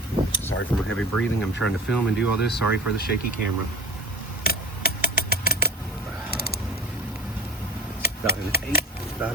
Sorry for my heavy breathing. I'm trying to film and do all this. Sorry for the shaky camera. About 1/8, about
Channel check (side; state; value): both; normal; correlation 0.34